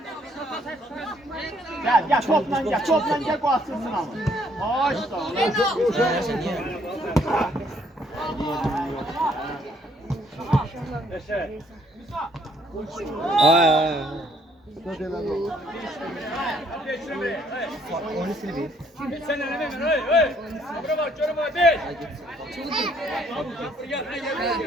Gel toplan gel bu atsın ama. Hoş da. Sen ne demek? Hey. Buraya bak, şöyle bak. Gel.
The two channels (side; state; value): both; normal; correlation 0.66